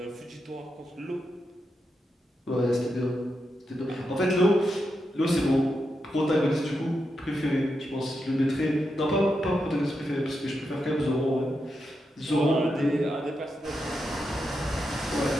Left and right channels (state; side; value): normal; both; correlation 0.86